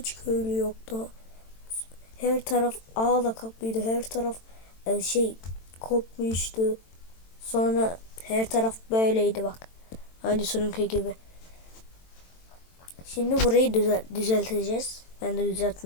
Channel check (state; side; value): late; right; 22 ms